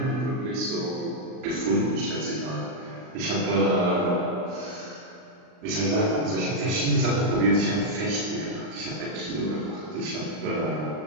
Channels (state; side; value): late; left; 39 ms